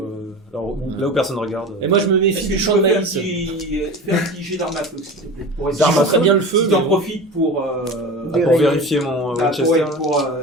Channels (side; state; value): both; normal; correlation 0.31